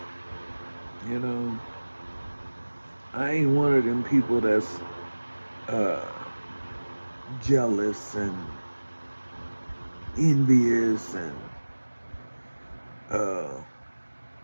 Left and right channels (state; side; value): inverted; both; correlation -1.00